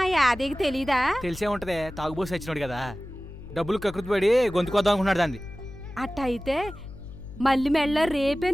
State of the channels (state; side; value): noise; left; hum, 14 dB below the sound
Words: ఆ యాదయ్యకి తెలీదా? తెలిసే ఉంటదే, తాగుబోసి వచ్చినాడు కదా, డబ్బులు కకృతి పడి గొంతుకొద్దాం అనుకున్నాడు దాన్ని. అట్టయితే మళ్ళీ మెళ్ళ రేపే